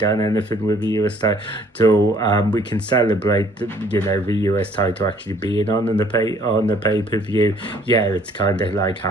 anything with the US title. We can celebrate the US title actually being on the pay-per-view. Yeah, it's kind of like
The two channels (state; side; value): normal; both; correlation 0.59